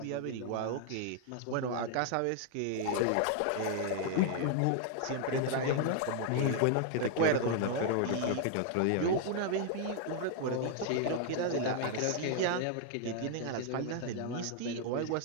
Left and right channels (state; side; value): different; both; correlation 0.00